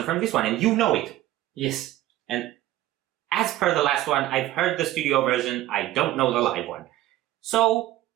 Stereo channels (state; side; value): quieter; left; 14.9 dB